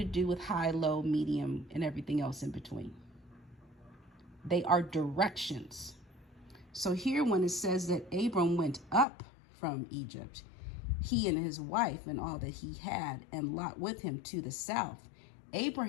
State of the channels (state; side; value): drops out; right; at 9.1 s